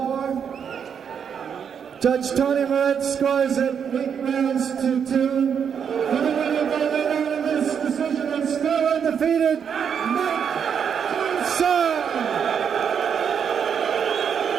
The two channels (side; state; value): left; quieter; 7.4 dB